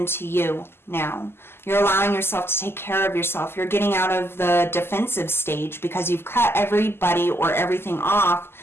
to you now. You're allowing yourself to take care of yourself. You're getting out of the defensive stage because you've cut everybody or everything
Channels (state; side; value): late; right; 0.12 ms